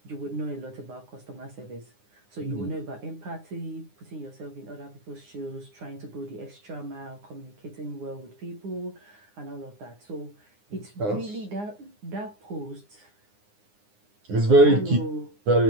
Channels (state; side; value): late; left; 9.7 ms